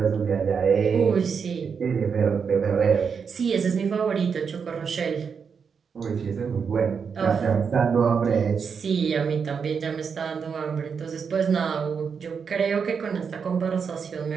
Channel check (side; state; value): left; quieter; 6.2 dB